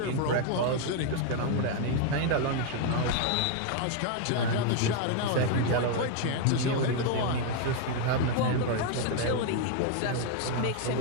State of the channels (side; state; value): both; different; correlation 0.00